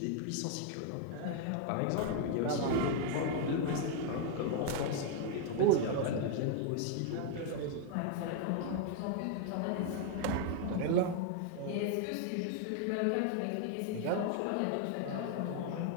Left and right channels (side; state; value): both; different; correlation 0.00